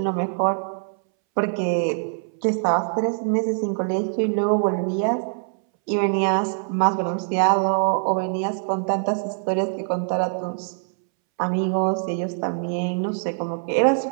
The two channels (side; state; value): left; silent; 63 dB below the other